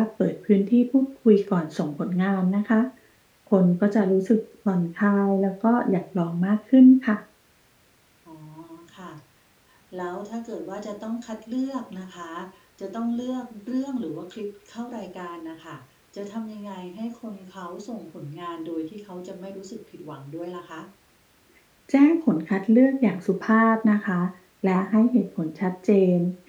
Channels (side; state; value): both; identical; correlation 1.00